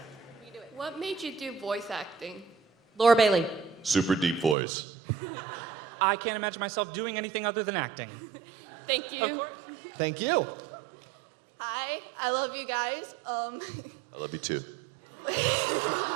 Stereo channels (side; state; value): left; drops out; at 4.5 s